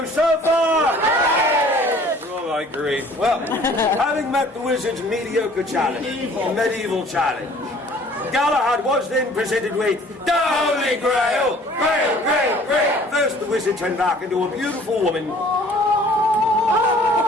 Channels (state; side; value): normal; both; correlation 0.53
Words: so far? Oh, I agree. Well, having met the wizard's mediocre challenge, medieval challenge, Galahad was then presented with the Holy Grail! Grail, Grail, Grail! First, the wizard turned back into a beautiful woman.